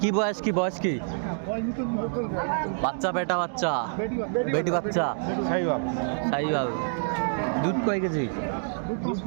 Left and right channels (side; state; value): left; silent; digital silence